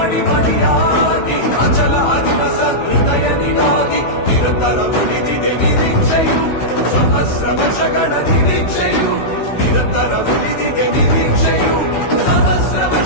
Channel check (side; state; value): right; late; 16 ms